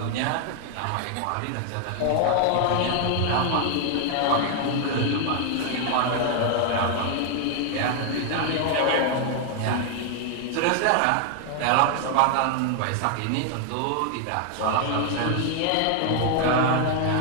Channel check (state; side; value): different; both; correlation 0.00